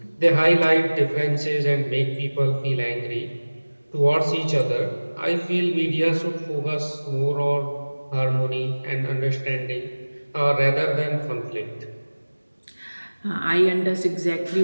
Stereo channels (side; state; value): both; inverted; correlation -1.00